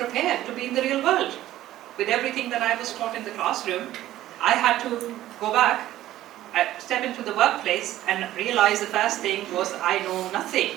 to be in the real world. With everything that I was taught in the classroom, I had to go back, step into the workplace, and realize the first thing was I know nothing.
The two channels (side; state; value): left; quieter; 14.2 dB